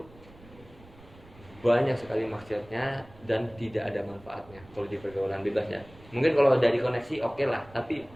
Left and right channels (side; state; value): right; noise; rumble, 22 dB below the sound